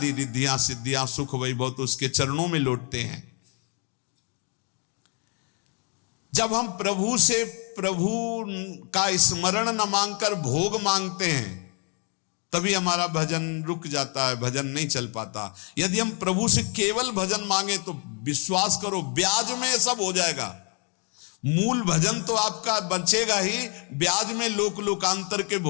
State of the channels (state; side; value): quieter; right; 37.6 dB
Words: रिद्धियां सिद्धियां सुख वैभव तो उसके चरणों में लौटते हैं। जब हम प्रभु से प्रभु का स्मरण न मांगकर भोग मांगते हैं, तभी हमारा भजन रुक जाता है, भजन नहीं चल पाता। यदि हम प्रभु से केवल भजन मांगे तो विश्वास करो ब्याज में सब हो जाएगा। मूल भजन तो आपका बचेगा ही, ब्याज में लोकांतर के